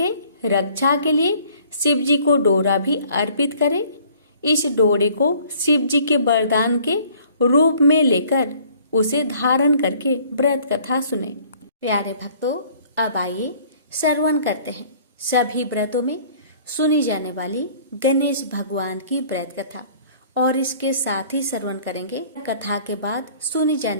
रक्षा के लिए शिव जी को डोरा भी अर्पित करें। इस डोरे को शिव जी के वरदान के रूप में लेकर उसे धारण करके व्रत कथा सुने। प्यारे भक्तों, अब आइए श्रवण करते हैं सभी व्रतों में सुनी जाने वाली गणेश भगवान की व्रत कथा और इसके साथ ही श्रवण करेंगे कथा के बाद सुनी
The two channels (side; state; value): both; inverted; correlation -0.55